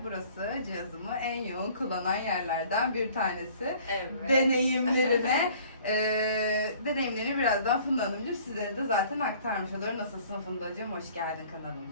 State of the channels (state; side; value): inverted; both; correlation -0.53